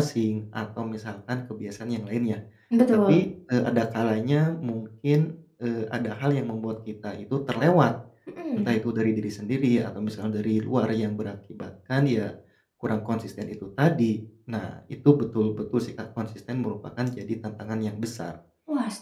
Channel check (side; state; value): both; identical; correlation 1.00